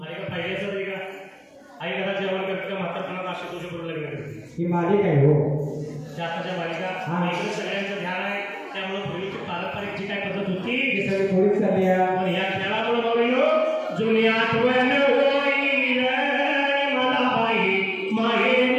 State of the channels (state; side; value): identical; both; correlation 1.00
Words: आई का पाहिजे असं नाही का, आई घरात जेवण करते का म्हातारपणात अशी तुझ्या बरोबर लग्न करते. ही मालिक आहे हो. आताच्या बालिका इकडे सगळ्यांचं ध्यान आहे. त्यामुळे पूर्वीची पारंपरिक जी काय पद्धत होती ती सगळी थोडीच चालली आहे. पण या खेळामुळे बघून जुनी आठवण होईल मला बाई